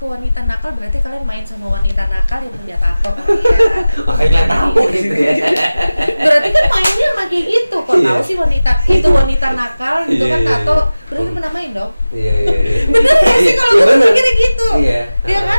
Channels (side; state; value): both; inverted; correlation -0.97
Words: wanita nakal berarti kalian main sama wanita nakal yang punya tato kali ya. Makanya kalian tahu gitu ya. Berarti kan mainnya sama kayak gitu. Kok Iya. tahu sih wanita itu wanita nakal gitu kan Iya. tato, berarti pernah main dong. Iya. Bener gak sih kalau gue bener. pikirnya gitu? Iya. Iya